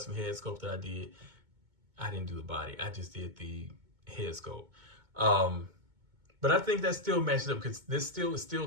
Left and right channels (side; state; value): left; late; 2.2 ms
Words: head sculpt that I did. I didn't do the body. I just did the head sculpt. But I think that still matches up because this is still